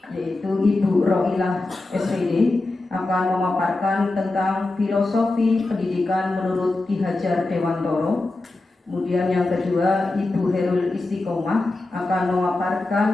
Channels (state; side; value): quieter; right; 3.0 dB